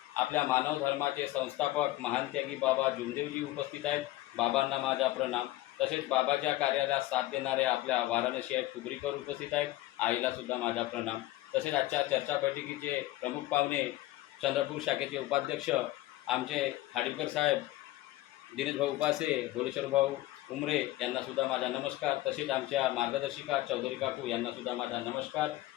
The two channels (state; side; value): quieter; right; 16.6 dB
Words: आपल्या मानव धर्माचे संस्थापक महान त्यागी बाबा जुमदेवजी उपस्थित आहेत। बाबांना माझा प्रणाम। तसेच बाबाच्या कार्याला साथ देणारे आपल्या वाराणसी आहेत तुगरीकर उपस्थित आहेत। आईला सुद्धा माझा प्रणाम। तसेच आजच्या चर्चा बैठकीचे प्रमुख पाहुणे चंद्रपूर शाखेचे उपाध्यक्ष आमचे खाडीलकर साहेब, दिनेश भाऊ उपासे, भोलेश्वर भाऊ उमरे यांना सुद्धा माझा नमस्कार। तसेच आमच्या मार्गदर्शिका चौधरी काकू यांना सुद्धा माझा नमस्कार।